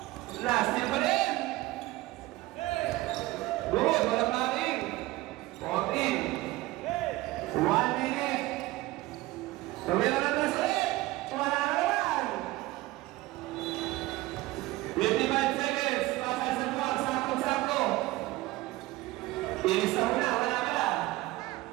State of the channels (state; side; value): quieter; left; 18.8 dB